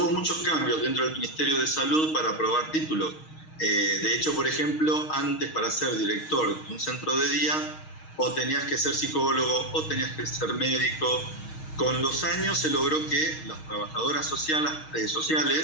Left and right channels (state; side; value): late; right; 6.4 ms